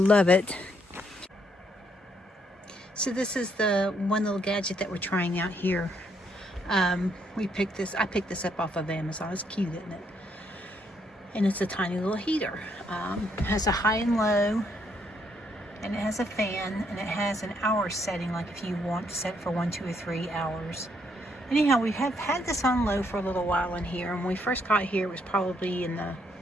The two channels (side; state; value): both; normal; correlation 0.72